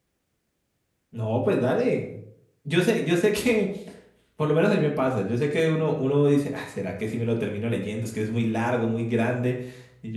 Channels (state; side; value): identical; both; correlation 1.00